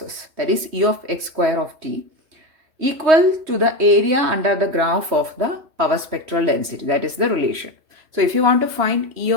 that is E of x square of t, equal to the area under the graph of the power spectral density. That is the relation. So if you want to find E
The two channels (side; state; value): left; late; 3.1 ms